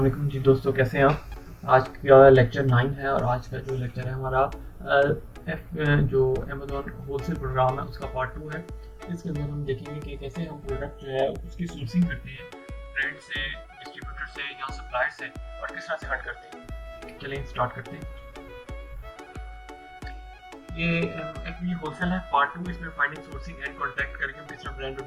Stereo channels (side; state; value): both; identical; correlation 1.00